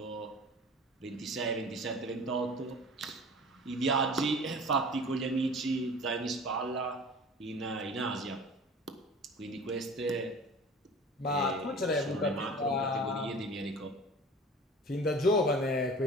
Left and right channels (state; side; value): normal; both; correlation 0.41